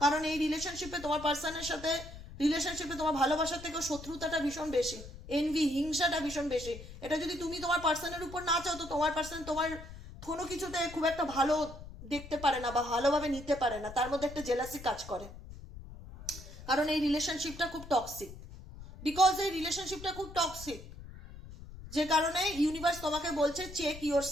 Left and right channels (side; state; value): left; noise; rumble, 14 dB below the sound